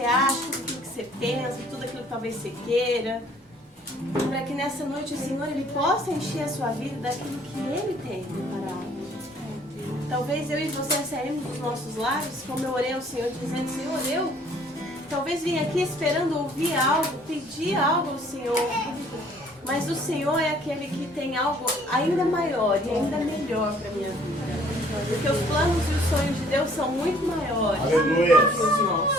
acha, tudo aquilo que você pensa, tudo aquilo que talvez você queira. Para que nessa noite o Senhor ele possa encher a sua vida daquilo que Ele tem preparado. Talvez eu e você saímos dos nossos lares, como eu orei ao Senhor, dizendo, Senhor, eu talvez vim aqui esperando ouvir algo, pedir algo ao Senhor. Mas o Senhor é aquele que tem algo ainda maior e ainda melhor para a minha vida. Porque os planos e os sonhos de Deus são muito maiores Aleluia. que os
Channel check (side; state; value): both; normal; correlation 0.58